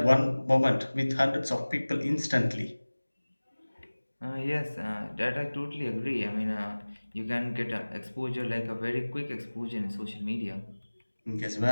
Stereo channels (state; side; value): inverted; both; correlation -1.00